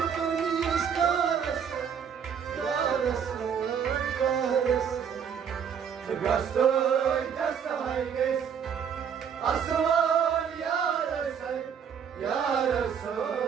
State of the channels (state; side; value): quieter; left; 7.5 dB